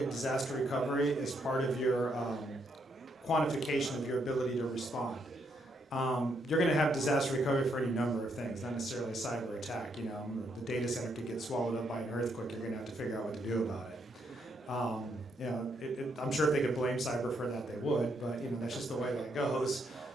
disaster recovery as part of your quantification of your ability to respond. You're going to have disaster recovery for any number of things, not necessarily a cyber attack. The data center could get swallowed up by an earthquake. You're going to have to figure out what to do about it. I'm sure if they could blame cyber for that, they would, but that's just the way that goes.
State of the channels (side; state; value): both; normal; correlation 0.76